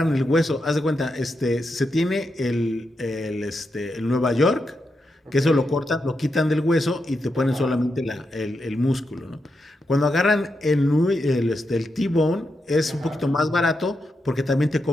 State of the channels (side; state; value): both; normal; correlation 0.85